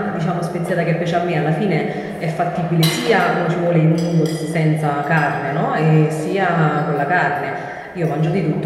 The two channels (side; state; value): both; identical; correlation 1.00